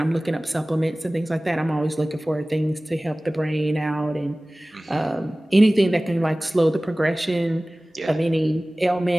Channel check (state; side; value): normal; both; correlation 0.98